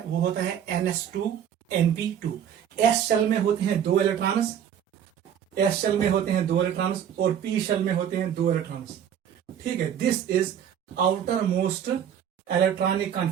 वो होता है NS2 NP2। एस शेल में होते हैं दो इलेक्ट्रॉन्स, एस शेल में होते हैं दो इलेक्ट्रॉन्स और पी शेल में होते हैं दो इलेक्ट्रॉन्स। ठीक है, this is outer most electronic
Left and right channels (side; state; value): left; quieter; 9.1 dB